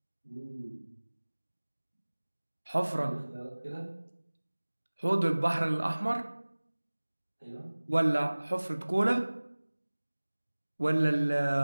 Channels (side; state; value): both; inverted; correlation -1.00